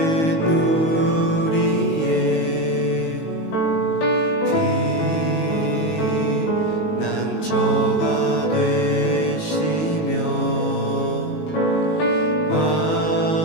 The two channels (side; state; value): right; late; 19 ms